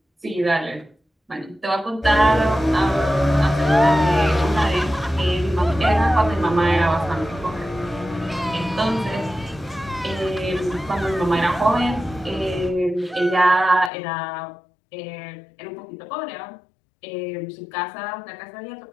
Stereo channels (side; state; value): right; drops out; at 13.9 s